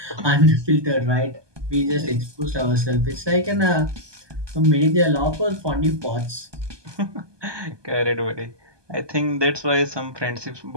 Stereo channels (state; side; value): late; left; 1.2 ms